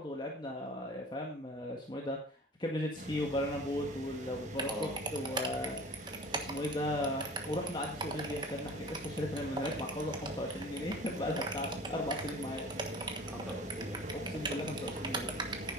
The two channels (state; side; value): normal; both; correlation 0.42